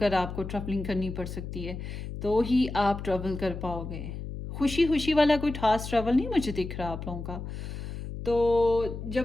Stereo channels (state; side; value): noise; left; hum, 8 dB below the sound